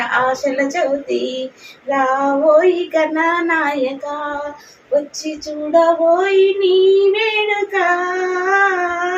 ఆశల చవితి రావోయి గణనాయక వచ్చి చూడబోయి నీ వేడుక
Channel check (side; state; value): both; identical; correlation 1.00